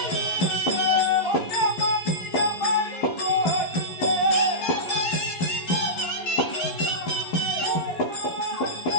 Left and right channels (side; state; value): right; late; 11 ms